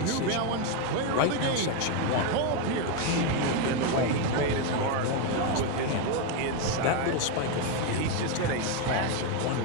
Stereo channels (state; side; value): different; both; correlation 0.02